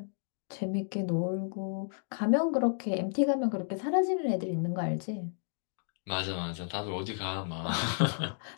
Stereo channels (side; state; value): right; silent; digital silence